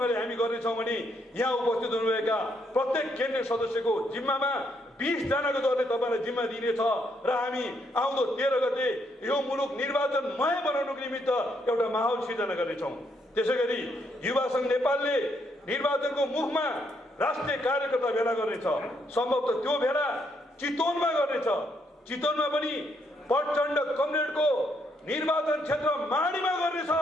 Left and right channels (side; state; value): both; normal; correlation 0.74